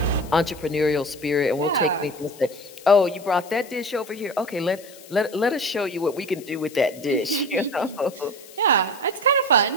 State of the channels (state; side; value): noise; left; hiss, 20 dB below the sound